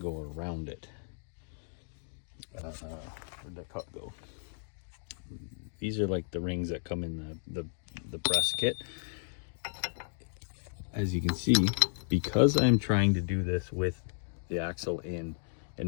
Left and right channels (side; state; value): right; silent; digital silence